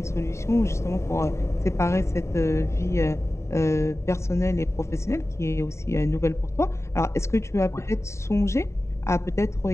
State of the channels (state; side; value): late; right; 0.14 ms